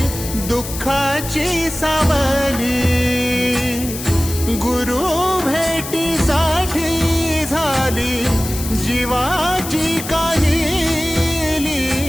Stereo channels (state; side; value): noise; left; hiss, 9 dB below the sound